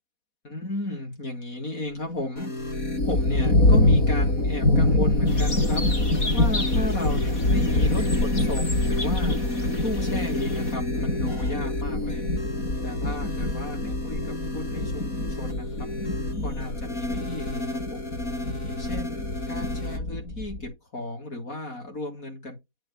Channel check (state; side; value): late; right; 4.1 ms